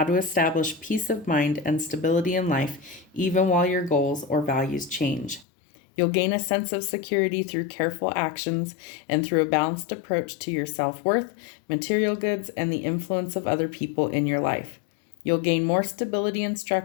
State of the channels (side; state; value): right; drops out; at 5.5 s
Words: to establish peace of mind and stability in life even while your goals or values change. You'll gain a sense of security through careful actions and through a balanced approach to your self-worth, material goods, and the influence of other people in your life. You'll gain more stability and